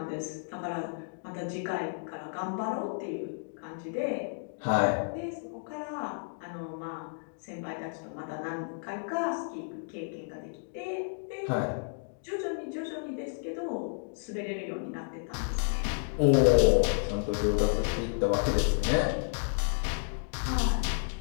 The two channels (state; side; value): silent; right; digital silence